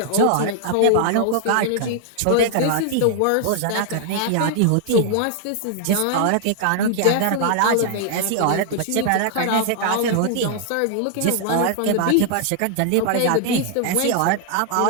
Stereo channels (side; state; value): both; different; correlation 0.00